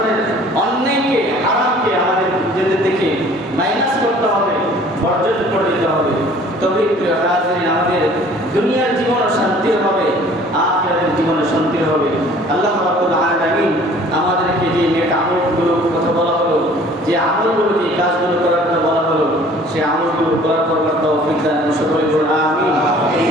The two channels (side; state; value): both; normal; correlation 0.52